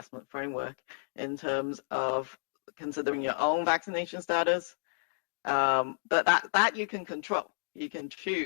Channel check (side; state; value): right; silent; digital silence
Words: framework in terms of considering your own vaccination status, but that you can control. You can